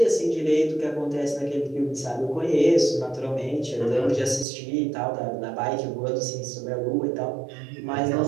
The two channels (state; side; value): drops out; left; at 4.5 s